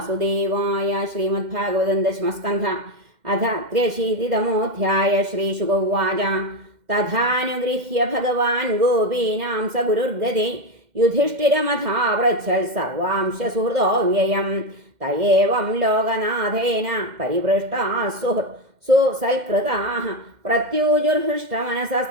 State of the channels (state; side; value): late; left; 2.1 ms